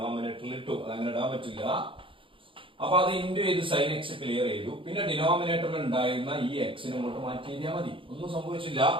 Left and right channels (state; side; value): late; left; 0.25 ms